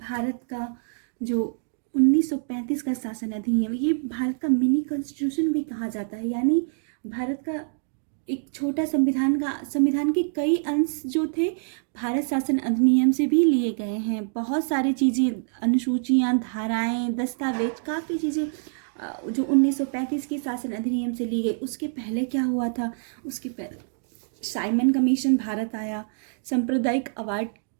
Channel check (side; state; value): left; silent; digital silence